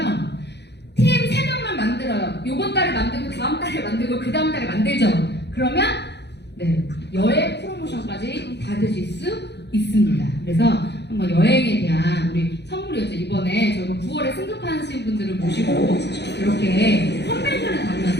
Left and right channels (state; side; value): late; right; 0.50 ms